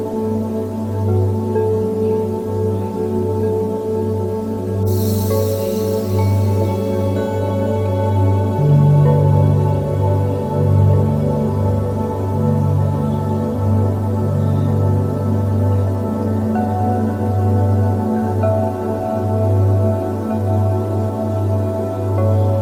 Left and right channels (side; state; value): both; identical; correlation 1.00